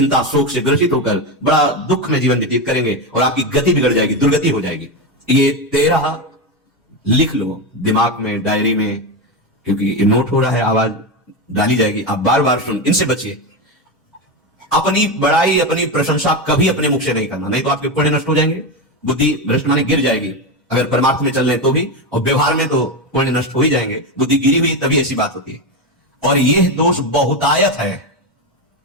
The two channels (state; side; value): normal; both; correlation 0.13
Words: शोक से ग्रसित होकर बड़ा दुख में जीवन व्यतीत करेंगे और आपकी गति बिगड़ जाएगी, दुर्गति हो जाएगी। ये 13 लिख लो दिमाग में, डायरी में, क्योंकि ये नोट हो रहा है, आवाज डाली जाएगी, आप बार बार सुन, इनसे बचिए। अपनी बड़ाई, अपनी प्रशंसा कभी अपने मुख से नहीं करना, नहीं तो आपके पुण्य नष्ट हो जाएंगे, बुद्धि भ्रष्ट माने गिर जाएगी। अगर परमार्थ में चल रहे तो भी, और व्यवहार में तो पुण्य नष्ट हो ही जाएंगे, बुद्धि गिरी हुई तभी ऐसी बात होती है। और यह दोष बहुतायत है,